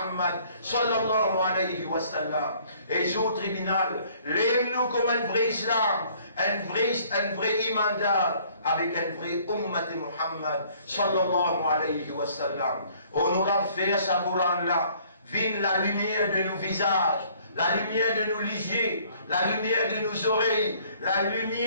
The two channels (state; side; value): inverted; both; correlation -0.59